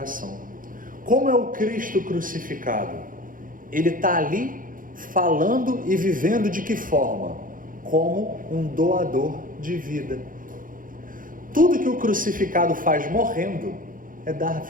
Como é o Cristo crucificado? Ele está ali falando e vivendo de que forma? Como um doador de vida. Tudo que o crucificado faz morrendo é dar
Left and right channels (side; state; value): left; late; 0.40 ms